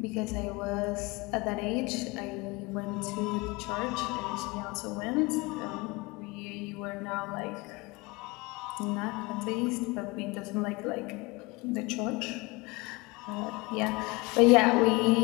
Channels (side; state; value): right; quieter; 25.1 dB